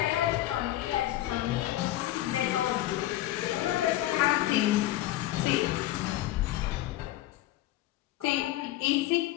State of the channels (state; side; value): quieter; right; 15.4 dB